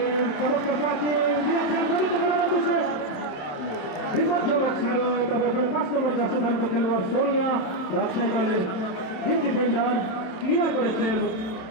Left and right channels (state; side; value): late; right; 27 ms